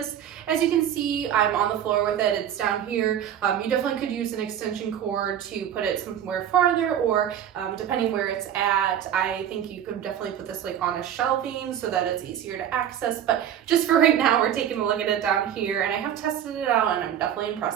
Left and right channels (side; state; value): left; quieter; 10.0 dB